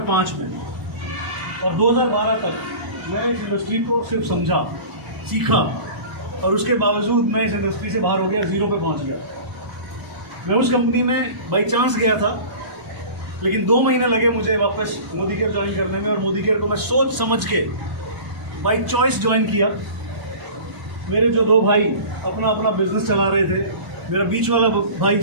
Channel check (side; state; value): left; late; 1.0 ms